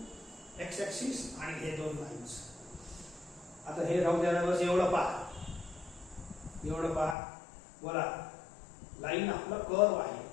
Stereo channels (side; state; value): right; drops out; at 7.2 s